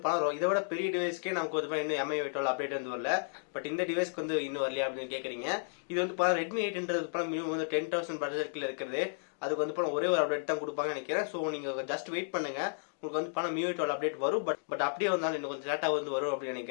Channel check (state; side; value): silent; right; digital silence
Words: பணம், இதை விட பெரிய டிவைஸ்க்கே நமக்கு வந்து இன்னும் MI/12 அப்டேட் வந்து வரல. பட் இந்த டிவைஸ்க்கு வந்து இன்னும் வரலையா அப்படின்னு கேக்குறீங்க. இது வந்து ரெட்மி 8ன்றது மினிமம் வந்து 10,000 பட்ஜெட்ல இருக்கிறது. அதுக்கு வந்து ஒரே ஒரு அப்டேட் தான் கொடுப்பாங்கன்னு நினைக்கிறேன். ஸோ நீங்க ஜஸ்ட் வெயிட் பண்ணுங்க, உங்களுக்கு வந்து MI/12 அப்டேட் வரும். பட் அப்படியே வந்தாலும் இன்னும் கொஞ்சம் லேட்டா வந்து வரும் அப்படின்னு